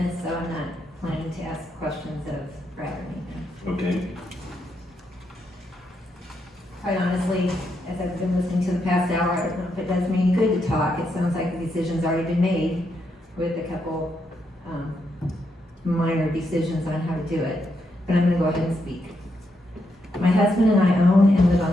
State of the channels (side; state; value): both; normal; correlation 0.80